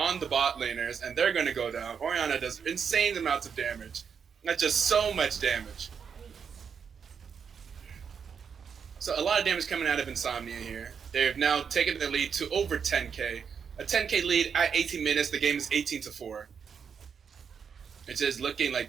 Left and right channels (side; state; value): left; quieter; 6.7 dB